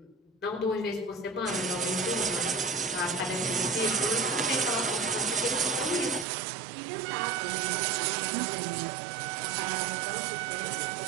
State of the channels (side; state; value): left; drops out; at 6.2 s